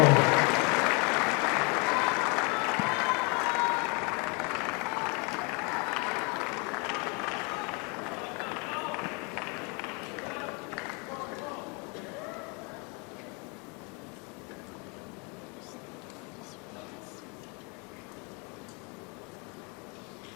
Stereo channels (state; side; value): quieter; right; 32.1 dB